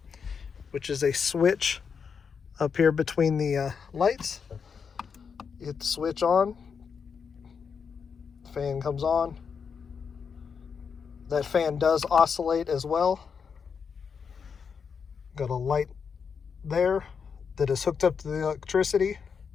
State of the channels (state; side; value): quieter; right; 6.2 dB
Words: which is a switch up here between the lights. You hit the switch on, the fan comes on. That fan does oscillate as well. Got a light there that is hooked up to the electricity.